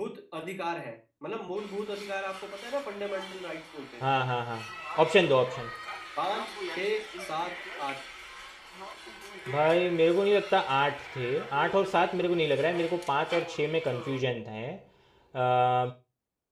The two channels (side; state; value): both; identical; correlation 1.00